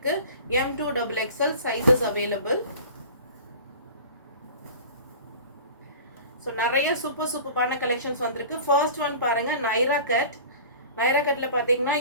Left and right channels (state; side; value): inverted; both; correlation -0.41